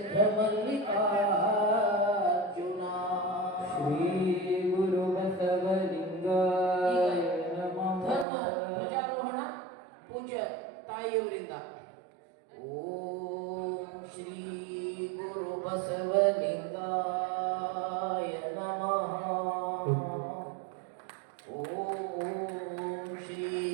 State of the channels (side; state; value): left; drops out; at 8.2 s